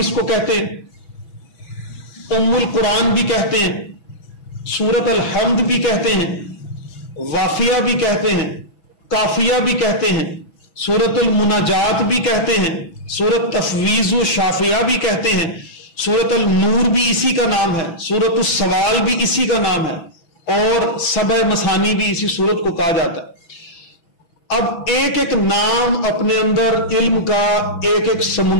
کو کہتے ہیں، ام القرآن بھی کہتے ہیں، سورۃ الحمد بھی کہتے ہیں، وافیہ بھی کہتے ہیں، کافیہ بھی کہتے ہیں، سورۃ المناجات بھی کہتے ہیں، سورۃ تفویض و شافیہ بھی کہتے ہیں، سورۃ النور بھی اسی کا نام ہے، سورۃ السوال بھی اسی کا نام ہے، اور سبع مثانی بھی اسی سورت کو کہا جاتا ہے. اب ایک ایک نام اپنے اندر علم کا ایک ایک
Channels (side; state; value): right; late; 6.0 ms